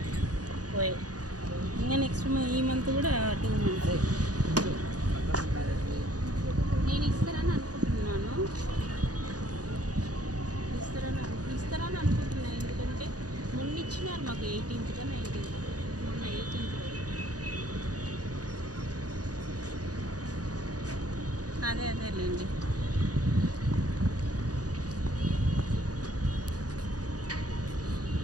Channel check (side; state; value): left; late; 0.68 ms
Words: పోయి ఇంకా నెక్స్ట్ ఈ మంత్ కూడా 2 మంత్స్ నేను ఇస్తారని అనుకుంటున్నాను. ఇస్తారని అనుకుంటున్నాను, ఎందుకంటే మొన్న ఇచ్చినారు మాకు 18th 19th, మొన్న 18th. అదేలేండి.